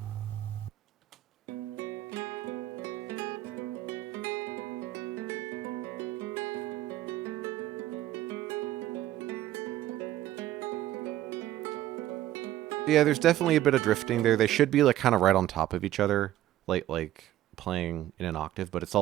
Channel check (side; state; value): left; quieter; 13.8 dB